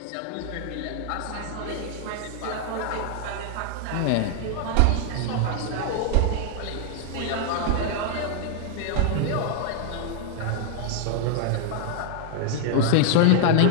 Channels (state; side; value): different; both; correlation -0.01